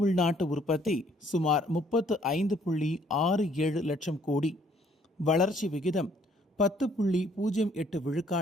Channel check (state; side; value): normal; both; correlation 0.63